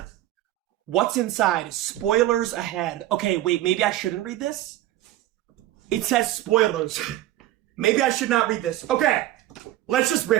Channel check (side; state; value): left; quieter; 14.5 dB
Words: What's inside? Spoilers ahead. Okay, wait, maybe I shouldn't read this? It says spoilers. Maybe I should not read this. Okay, let's just